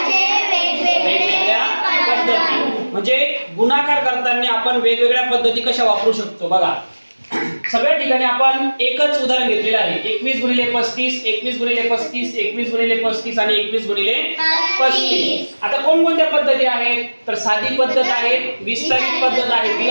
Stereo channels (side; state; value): both; inverted; correlation -1.00